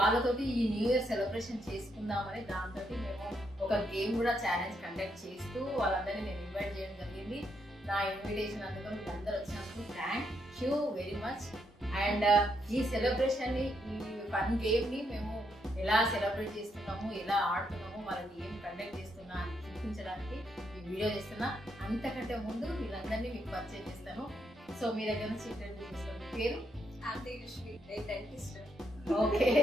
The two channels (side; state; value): both; normal; correlation 0.77